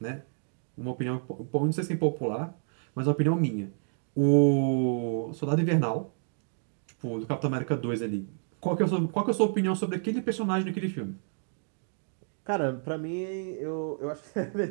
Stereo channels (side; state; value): left; silent; digital silence